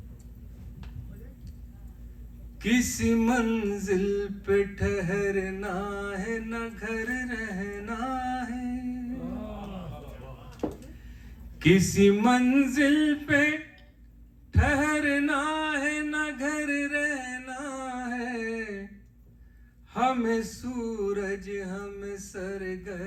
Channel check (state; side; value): identical; both; correlation 1.00